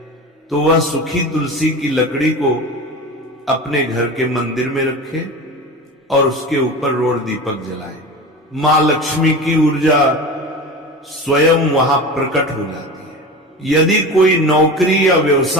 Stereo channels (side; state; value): both; normal; correlation 0.30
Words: तो वह सूखी तुलसी की लकड़ी को अपने घर के मंदिर में रखे और उसके ऊपर रोड दीपक जलाए। मां लक्ष्मी की ऊर्जा स्वयं वहां प्रकट हो जाती है। यदि कोई नौकरी या